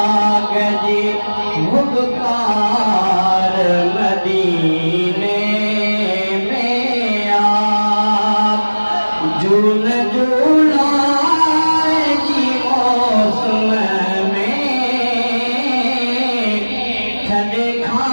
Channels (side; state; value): both; inverted; correlation -1.00